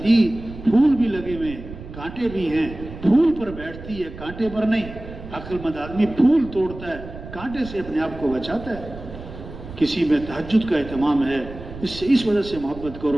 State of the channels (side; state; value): right; noise; rumble, 13 dB below the sound